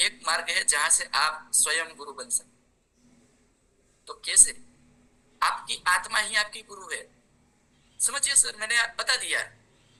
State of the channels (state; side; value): identical; both; correlation 1.00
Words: मार्ग है जहां से आप स्वयं गुरु बन सकते। तो कैसे? आपकी आत्मा ही आपकी गुरु है, समझिए सर। मैंने बता दिया